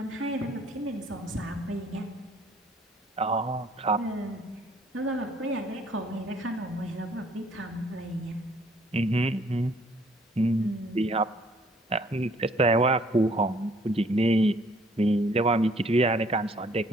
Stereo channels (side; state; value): both; normal; correlation 0.61